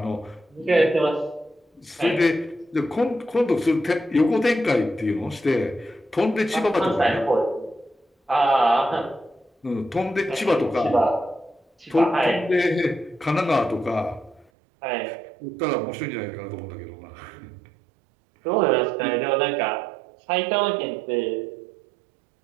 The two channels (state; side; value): drops out; left; at 14.5 s